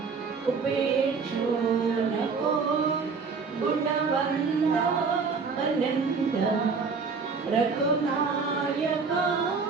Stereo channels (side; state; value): left; quieter; 5.0 dB